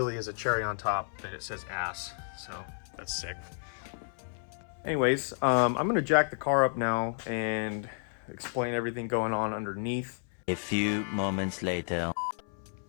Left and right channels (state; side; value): silent; right; 57 dB below the other